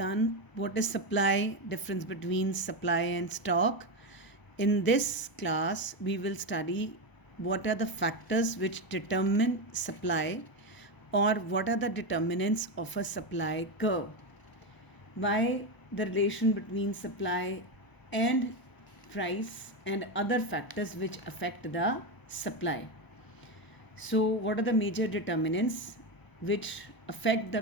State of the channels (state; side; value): late; right; 1.0 ms